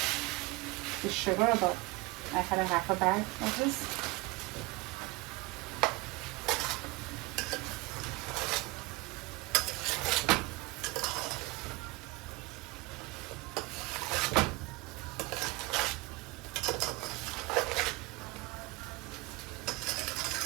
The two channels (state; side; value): quieter; left; 23.6 dB